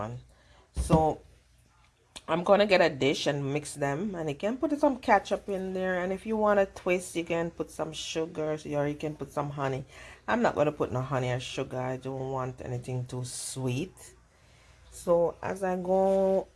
So I'm gonna get a dish and mix them, and you can put some ketchup in there, and if you want to twist you can put some sugar, or you can put some honey. I'm not gonna put no honey or sugar. I don't want anything too sweet. So as I go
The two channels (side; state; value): both; identical; correlation 1.00